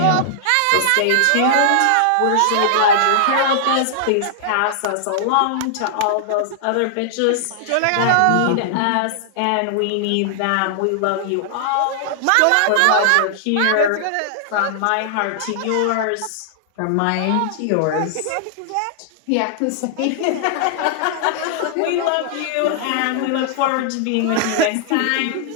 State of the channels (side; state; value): both; different; correlation -0.01